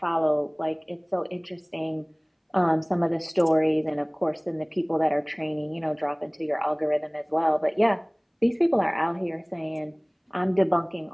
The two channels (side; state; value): both; identical; correlation 1.00